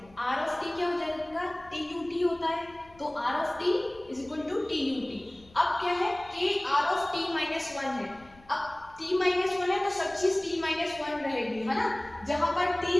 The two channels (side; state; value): left; noise; rumble, 26 dB below the sound